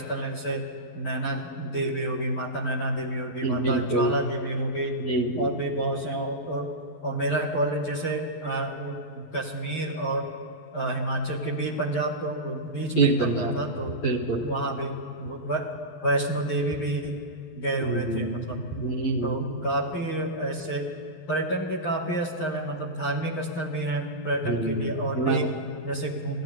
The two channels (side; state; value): right; late; 12 ms